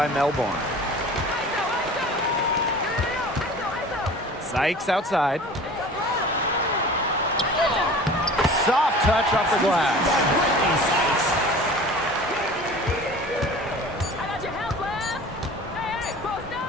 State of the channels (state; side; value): normal; both; correlation 0.41